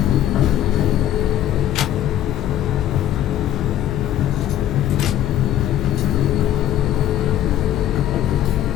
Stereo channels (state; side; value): quieter; right; 11.9 dB